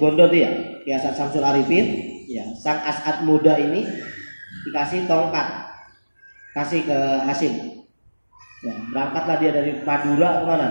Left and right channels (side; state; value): both; inverted; correlation -1.00